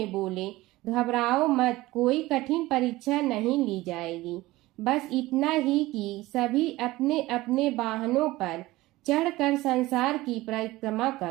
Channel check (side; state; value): left; quieter; 18.6 dB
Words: बोले, घबराओ मत, कोई कठिन परीक्षा नहीं ली जाएगी। बस इतना ही कि सभी अपने अपने वाहनों पर चढ़कर संसार की परिक्रमा